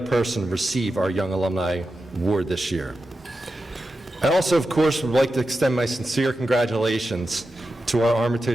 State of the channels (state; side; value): normal; both; correlation 0.91